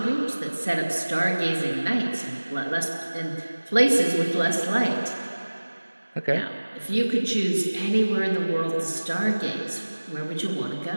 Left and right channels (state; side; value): inverted; both; correlation -1.00